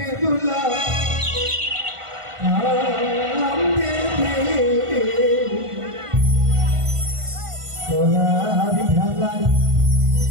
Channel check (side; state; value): left; late; 1.5 ms